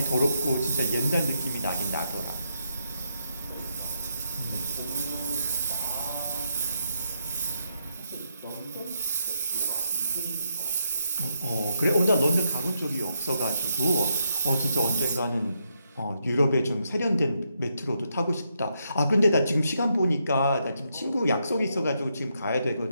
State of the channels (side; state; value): both; inverted; correlation -0.80